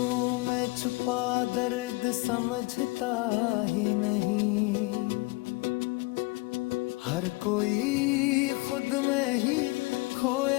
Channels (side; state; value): right; quieter; 24.4 dB